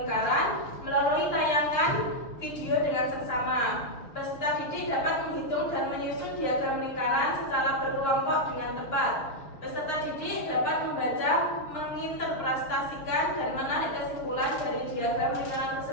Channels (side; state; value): right; late; 6.6 ms